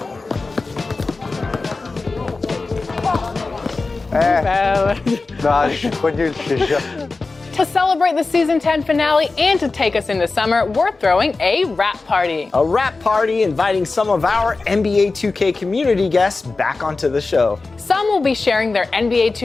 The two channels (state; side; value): quieter; right; 3.7 dB